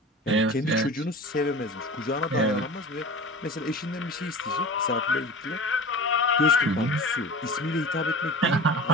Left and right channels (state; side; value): normal; both; correlation 0.36